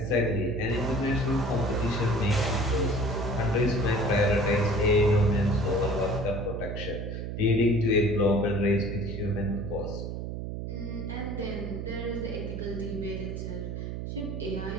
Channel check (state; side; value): noise; right; hum, 5 dB below the sound